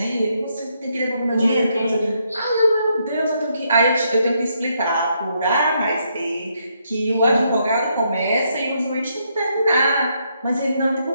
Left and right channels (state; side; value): inverted; both; correlation -0.76